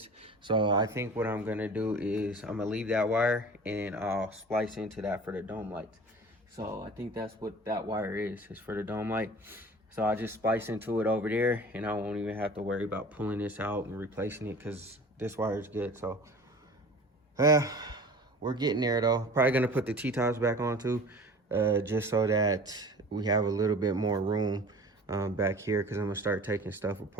So I think what I'm gonna do is I'm gonna leave that wire and I'll splice into that for the dome lights. So I think that's what that wire is for the dome light. So I just splice into it over there and I won't even have to worry about pulling this out and replacing it because this wire is good. So we're getting there though. Probably gonna put the T-tops back on too, just so that we have a little bit more room back here, because I'm gonna start taking stuff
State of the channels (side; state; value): both; normal; correlation 0.41